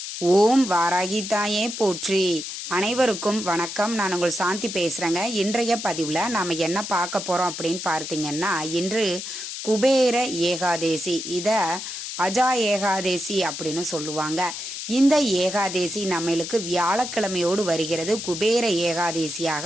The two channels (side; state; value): left; noise; hiss, 7 dB below the sound